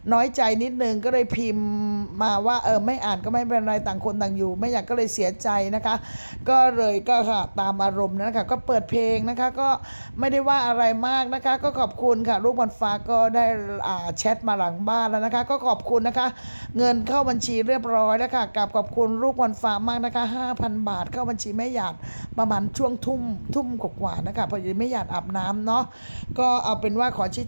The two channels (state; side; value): inverted; both; correlation -1.00